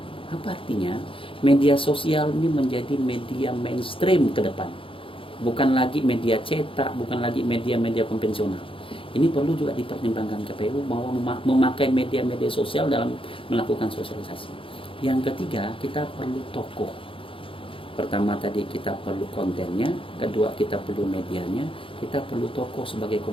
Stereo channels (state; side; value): late; right; 0.26 ms